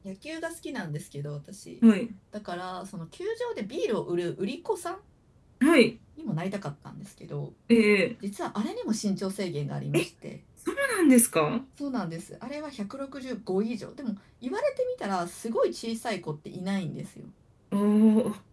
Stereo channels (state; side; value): identical; both; correlation 1.00